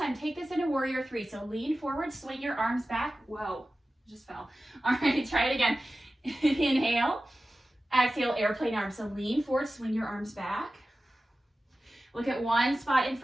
take this into Warrior 3. So lean forward, swing your arms back. Whoa, just fell. All right, try it again. Inhale. Exhale, airplane arms. So lean forward, swing your arms back. Look at one spot in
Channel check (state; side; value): normal; both; correlation 0.95